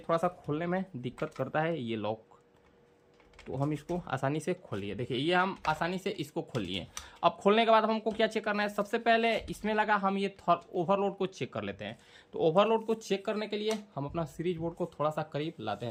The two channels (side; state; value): both; identical; correlation 1.00